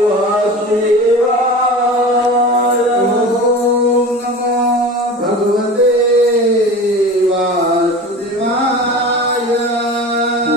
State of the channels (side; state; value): both; normal; correlation 0.34